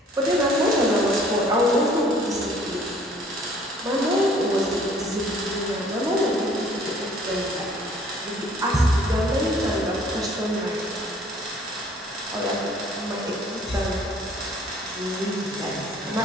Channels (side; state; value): both; normal; correlation 0.56